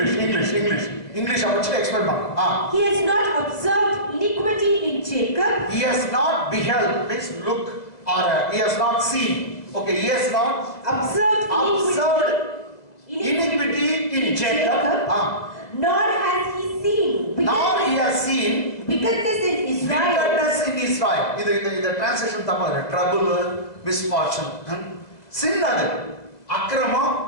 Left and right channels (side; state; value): right; late; 2.0 ms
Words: இங்கிலீஷ் இங்கிலீஷ் இங்கிலீஷ் படிச்சு எக்ஸ்பிளைன் பண்ணுங்க. He has not observed iniquity in Jacob. He has not beheld, means look, or he has not seen. Okay, he has not observed iniquity in Jacob. Nor has he seen. Nor he has seen wickedness in Israel. Wickedness in Israel. இது translation தப்பா இருக்கு. Trouble, misfortune. Sin அது அக்கிரமம்